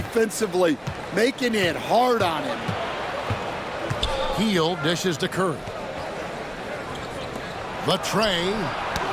making it hard on him. Heel dishes to Curry. The tray.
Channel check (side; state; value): both; identical; correlation 1.00